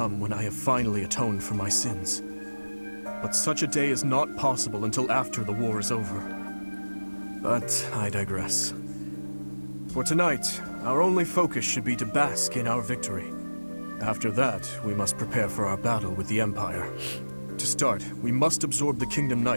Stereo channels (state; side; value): inverted; both; correlation -1.00